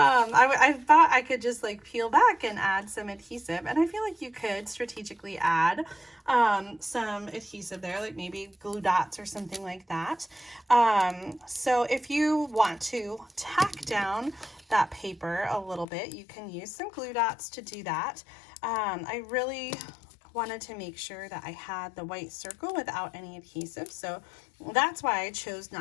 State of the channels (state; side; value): drops out; right; at 15.9 s